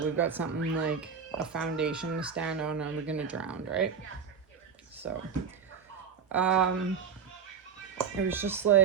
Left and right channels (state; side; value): quieter; left; 6.6 dB